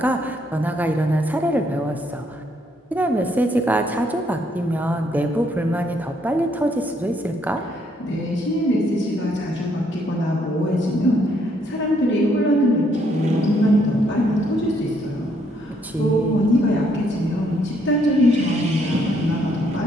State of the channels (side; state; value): both; normal; correlation 0.70